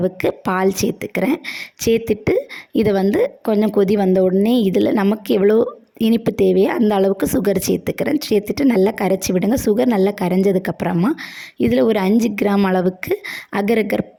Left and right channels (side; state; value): both; identical; correlation 1.00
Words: பால் சேர்த்துக்கிறேன். சேர்த்துட்டு இதை வந்து கொஞ்சம் கொதி வந்த உடனே இதில் நமக்கு எவ்வளோ இனிப்பு தேவையோ அந்த அளவுக்கு சுகர் சேர்த்துக்கிறேன். சேர்த்துட்டு நல்லா கரைச்சி விடுங்க. சுகர் நல்லா கரைஞ்சதுக்கப்புறமா இதில் ஒரு 5 கிராம் அளவுக்கு அகர்